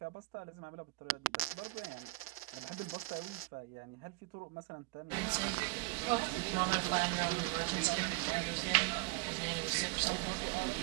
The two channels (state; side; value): quieter; left; 22.7 dB